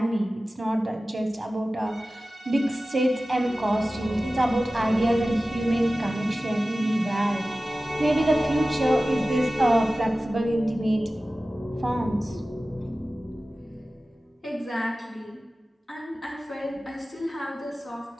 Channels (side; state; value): both; normal; correlation 0.96